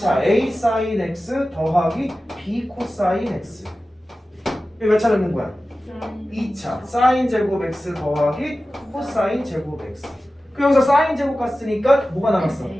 a 사인 x 더하기 b 코사인 x. 여기 몇 차 넣는 거야? 2차 사인 제곱 x 더하기 코사인 제곱 x. 그 여기서 사인 제곱 갔으니까 뭐가 남았어?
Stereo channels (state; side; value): normal; both; correlation 0.95